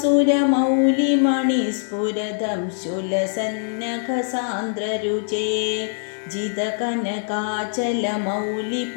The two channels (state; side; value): silent; right; digital silence